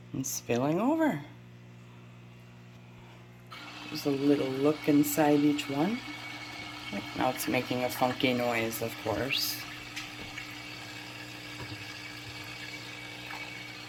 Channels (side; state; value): both; identical; correlation 1.00